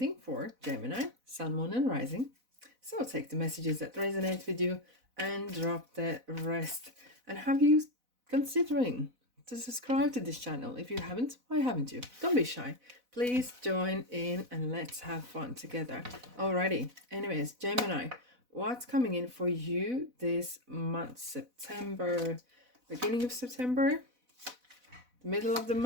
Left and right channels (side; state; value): left; late; 4.0 ms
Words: for Gemini, Sun, Moon, and Rising. So take the messages that resonate with you and drop the rest. And have you considering to subscribe to this channel? If you haven't, why haven't you? Don't be shy. Please join in and let's have fun together. Alrighty. Anyways, Gemini, what's coming in for you this month? September, beginning of September, middle of the